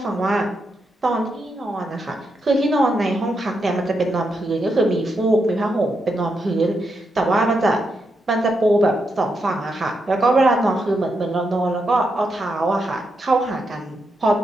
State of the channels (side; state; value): both; normal; correlation 0.83